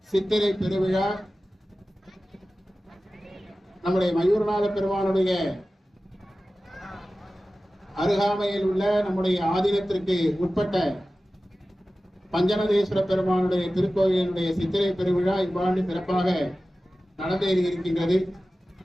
சித்திரை பெருவிழா நம்முடைய மயூரநாத பெருமானுடைய அருகாமையில் உள்ள நம்முடைய ஆதீனத்திற்கு உட்பட்ட பஞ்சநதேஸ்வர பெருமானுடைய திருக்கோயிலுடைய சித்திரை பெருவிழா இவ்வாண்டு சிறப்பாக நடந்தேறி இருக்கின்றது.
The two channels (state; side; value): normal; both; correlation 0.95